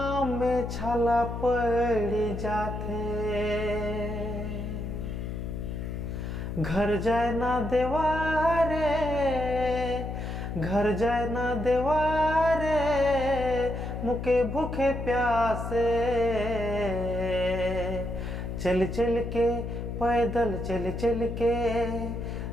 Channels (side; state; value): left; noise; hum, 5 dB below the sound